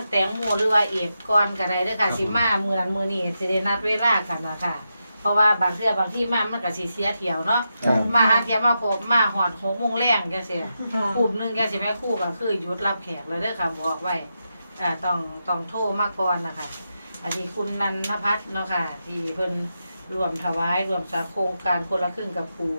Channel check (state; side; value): inverted; both; correlation -0.87